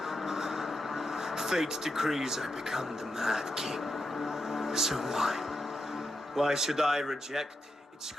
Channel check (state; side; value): normal; both; correlation 0.86